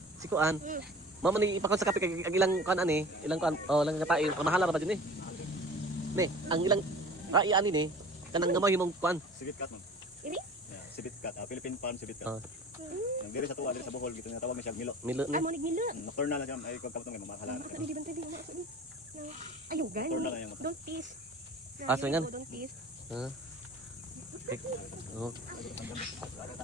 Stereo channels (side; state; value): both; normal; correlation 0.41